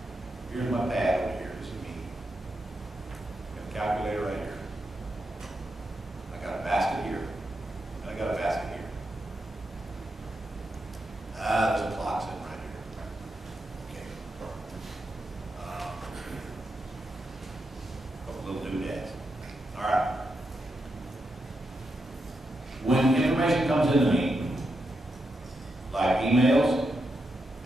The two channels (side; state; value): both; normal; correlation 0.85